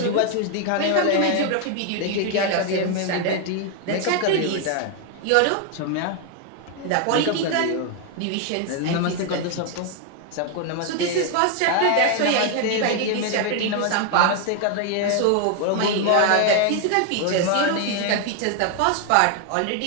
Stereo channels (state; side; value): different; both; correlation 0.00